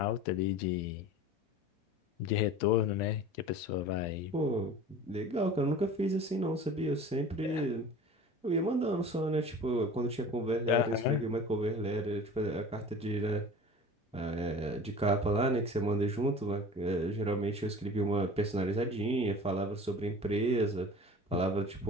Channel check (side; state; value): both; normal; correlation 0.40